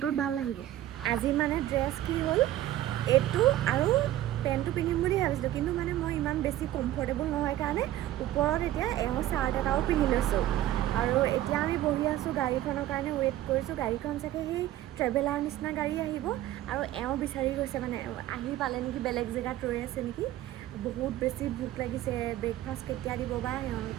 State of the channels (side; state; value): left; quieter; 13.7 dB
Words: ভাল লাগিব। আজি মানে ড্ৰেছ কি হ'ল, এইটো আৰু পেণ্টটো পিন্ধিম বুলি ভাবিছিলোঁ, কিন্তু মানে মই ইমান বেছি কমফৰ্টেবল নহয় কাৰণে ওপৰত এতিয়া চাৰ্ট এটাও পিন্ধি লৈছোঁ। আৰু এতিয়া আমি বহি আছোঁ, গাড়ীখনৰ কাৰণে ৱেইট কৰিছোঁ। গাড়ীখন চাগে সেই ট্ৰেভেলাৰ নিচিনা গাড়ী আহিব আৰু বিচাৰি গৈছে, মানে আহি পালে নেকি, বেলেগ জেগাত ৰৈ আছে নেকি। বহুত বেছি ভোক লাগিছে। ব্ৰেকফাষ্ট কেতিয়া দিব বা